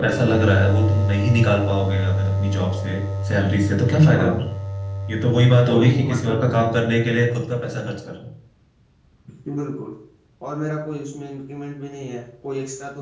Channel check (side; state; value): both; identical; correlation 1.00